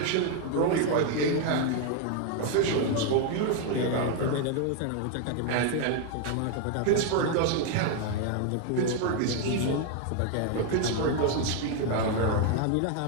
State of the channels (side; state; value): both; different; correlation 0.01